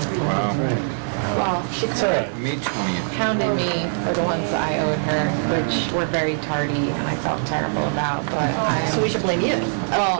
Wow. Well, she May 20th. pounded me for the ones that I owed her, which were very tardy and I felt terrible about, but So we should blame you.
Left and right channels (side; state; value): left; silent; 64 dB below the other